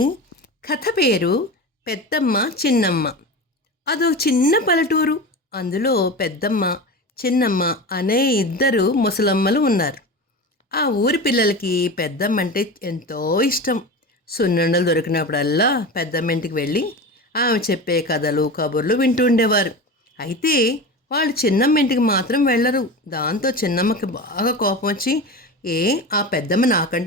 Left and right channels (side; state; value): both; normal; correlation 0.28